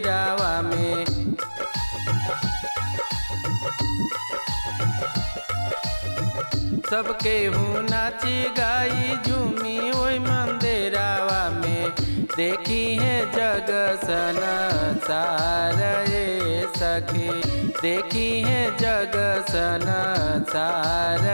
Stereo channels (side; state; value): both; inverted; correlation -1.00